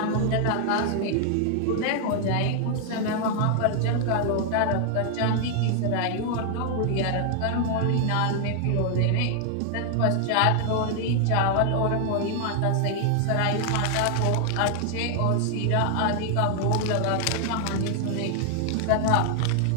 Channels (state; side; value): different; both; correlation 0.00